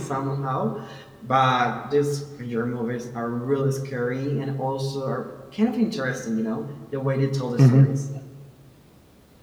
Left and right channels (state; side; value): identical; both; correlation 1.00